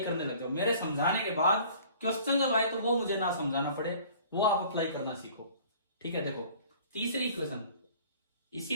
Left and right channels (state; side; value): inverted; both; correlation -0.50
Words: करने लग जाओ। मेरे समझाने के बाद क्वेश्चन जब आए तो वो मुझे ना समझाना पड़े, वो आप अप्लाई करना सीखो। ठीक है, देखो तीसरी इक्वेशन,